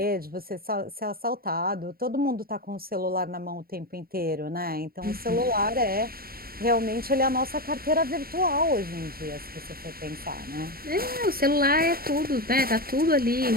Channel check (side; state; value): left; late; 0.43 ms